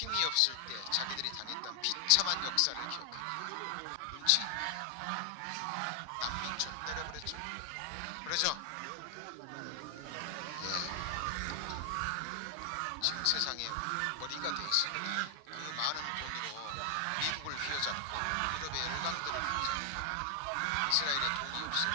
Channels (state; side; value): different; both; correlation 0.00